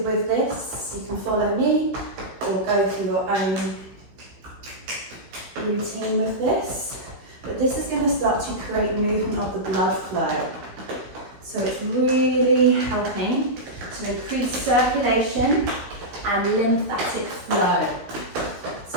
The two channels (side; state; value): left; late; 16 ms